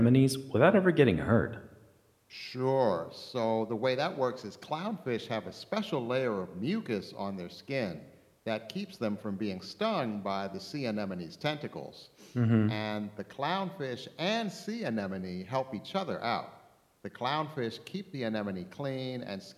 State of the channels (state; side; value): identical; both; correlation 1.00